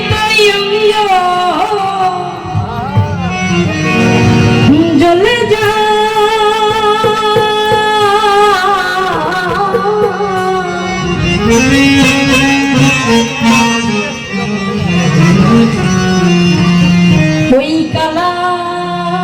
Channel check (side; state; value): both; identical; correlation 1.00